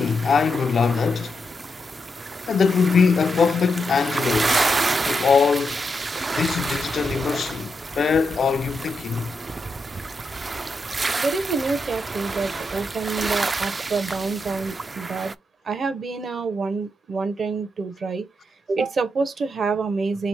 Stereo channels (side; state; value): both; normal; correlation 0.84